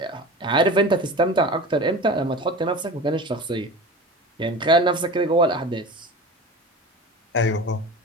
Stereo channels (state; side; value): normal; both; correlation 0.34